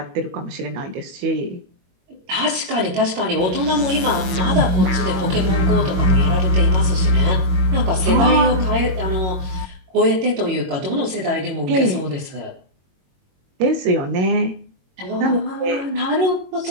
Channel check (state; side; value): late; left; 22 ms